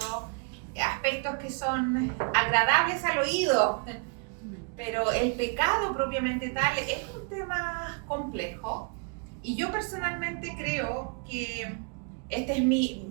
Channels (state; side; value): quieter; left; 38.1 dB